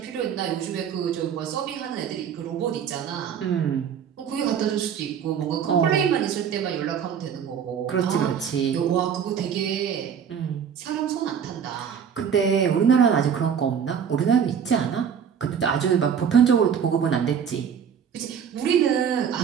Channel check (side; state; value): left; quieter; 7.7 dB